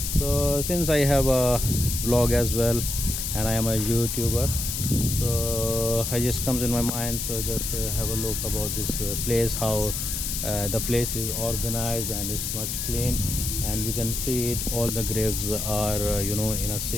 So since I have a vlog as well and I am a YouTuber, so I just comes in my mind, so just have a look about this place, how the place is organized and it's much clean, and you can see it, all the graves are in a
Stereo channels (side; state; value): left; noise; hiss, 3 dB below the sound